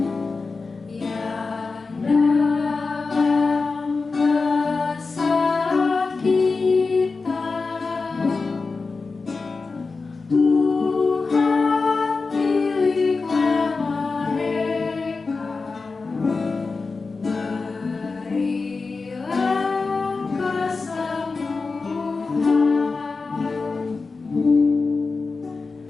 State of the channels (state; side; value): quieter; right; 4.2 dB